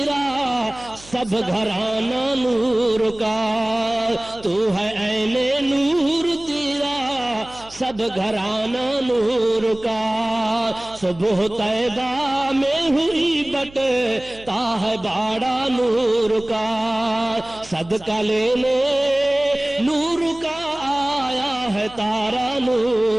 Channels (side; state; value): right; noise; hum, 21 dB below the sound